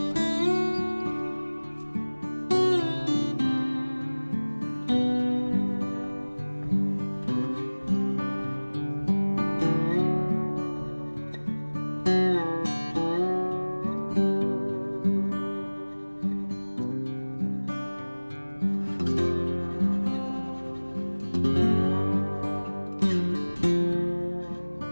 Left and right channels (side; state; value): both; inverted; correlation -1.00